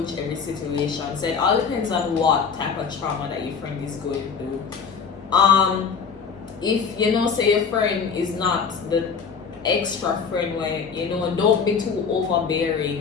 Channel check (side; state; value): right; quieter; 6.0 dB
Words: every situation. So it all depends on what type of trauma that your friend is going through. If you know, say your friend is not the extra friend where don't be too